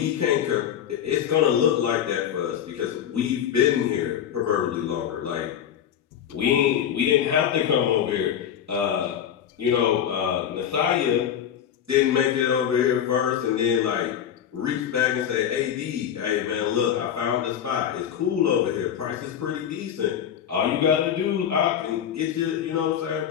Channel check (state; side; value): quieter; right; 9.3 dB